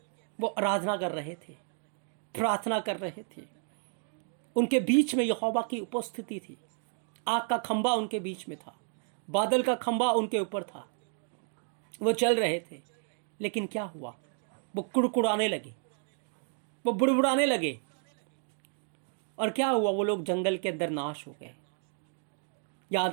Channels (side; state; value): left; silent; 55 dB below the other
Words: वो आराधना कर रहे थे, प्रार्थना कर रहे थे। उनके बीच में यहोवा की उपस्थिति थी। आग का खंबा उनके बीच में था, बादल का खंबा उनके ऊपर था। वो चल रहे थे, लेकिन क्या हुआ? वो कुड़कुड़ाने लगे, वो बुड़बुड़ाने लगे। और क्या हुआ? वो लोग जंगल के अंदर नाश हो गए। याद